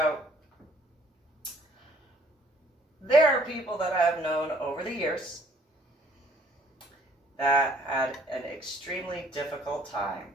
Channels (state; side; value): normal; both; correlation 0.60